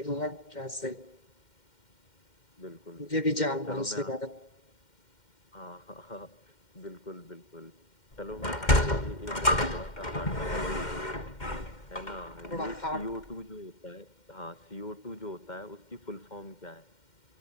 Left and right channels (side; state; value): right; late; 2.1 ms